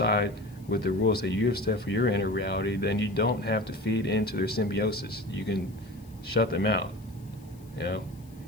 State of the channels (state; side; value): noise; left; hiss, 28 dB below the sound